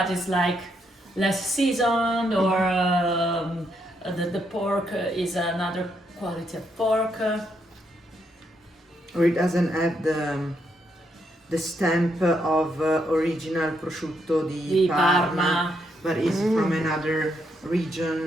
it's like less seasoned, or the pork is another quality of pork. Or it doesn't have the stamp of original prosciutto di Parma, but is from another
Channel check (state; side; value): normal; both; correlation 0.77